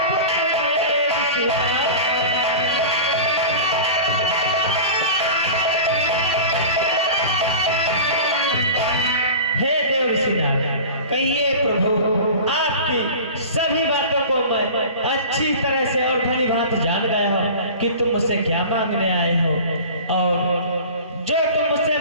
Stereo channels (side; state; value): both; inverted; correlation -0.35